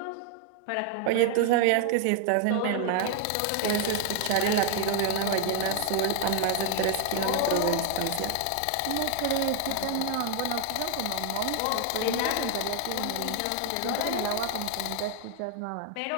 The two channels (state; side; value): different; both; correlation 0.00